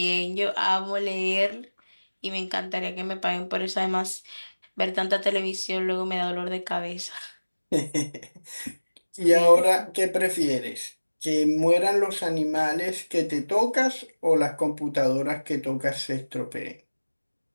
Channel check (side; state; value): both; inverted; correlation -1.00